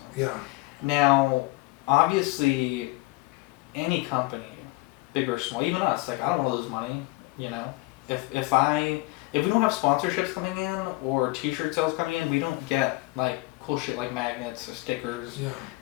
Yeah. Now, obviously, any company, big or small, even us, like I don't want to lose money. If we don't have sponsorships coming in or T-shirt sales coming in, we don't get like cool shit like magnets or stickers. Yeah.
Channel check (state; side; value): quieter; right; 22.0 dB